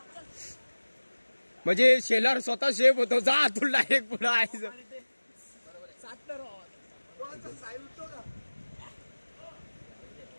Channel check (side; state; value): both; inverted; correlation -1.00